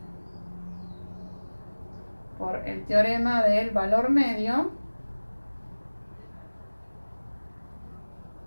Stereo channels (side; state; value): both; inverted; correlation -1.00